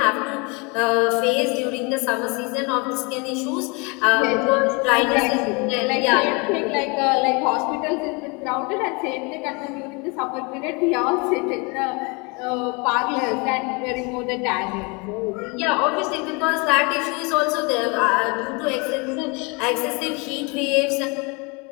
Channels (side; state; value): right; quieter; 29.8 dB